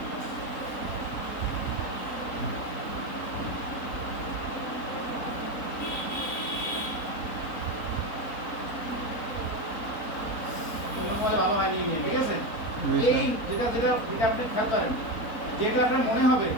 ভালো হয়নি, ঠিক আছে? এই যেটা যেটা যেটা আপনি খেয়াল করেন, যেটা আপনার মনে হবে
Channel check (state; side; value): late; right; 4.1 ms